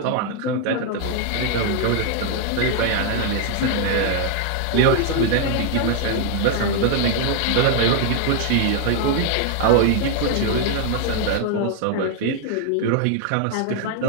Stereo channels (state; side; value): different; both; correlation 0.00